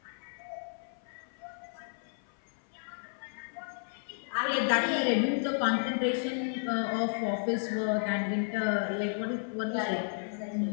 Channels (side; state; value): right; silent; 56 dB below the other